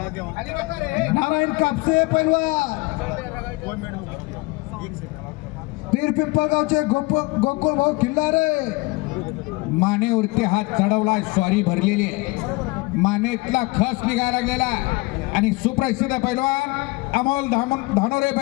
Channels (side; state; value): right; quieter; 24.3 dB